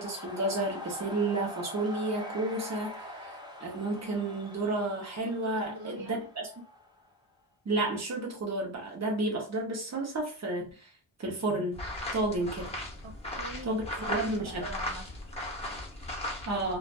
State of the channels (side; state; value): both; normal; correlation 0.19